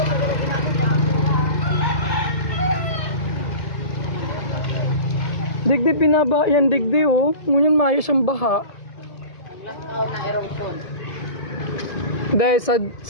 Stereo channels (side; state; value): right; late; 1.9 ms